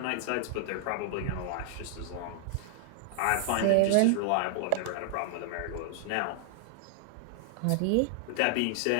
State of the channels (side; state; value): both; different; correlation -0.01